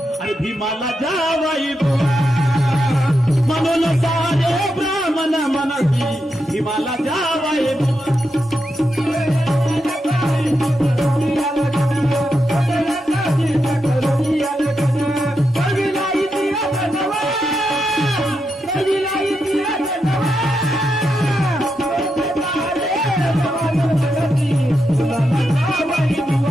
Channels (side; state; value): both; normal; correlation 0.85